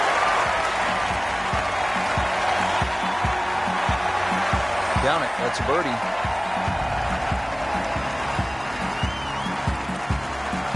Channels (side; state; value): left; noise; hum, 23 dB below the sound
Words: Down it. That's a birdie.